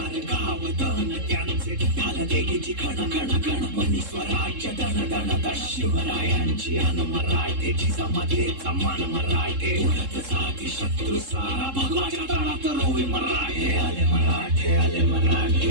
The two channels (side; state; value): left; late; 3.7 ms